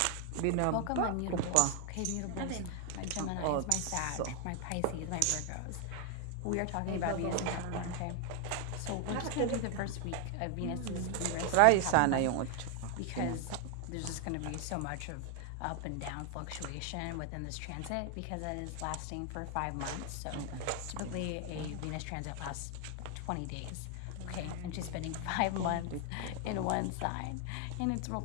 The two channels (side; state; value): both; different; correlation 0.01